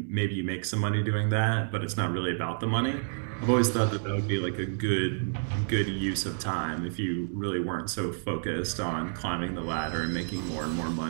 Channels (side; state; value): left; silent; 58 dB below the other